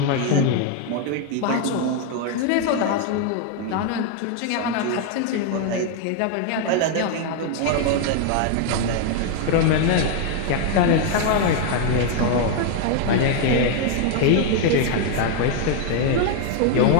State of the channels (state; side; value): different; both; correlation 0.00